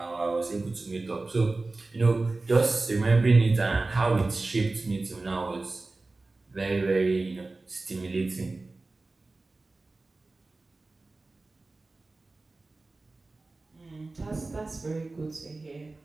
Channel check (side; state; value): left; quieter; 3.3 dB